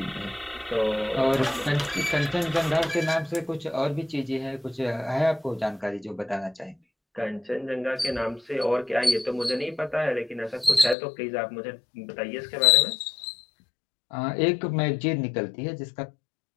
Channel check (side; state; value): right; drops out; at 11.0 s